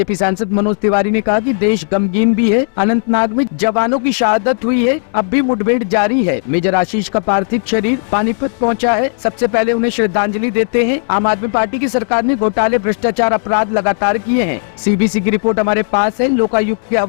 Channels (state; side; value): silent; right; 70 dB below the other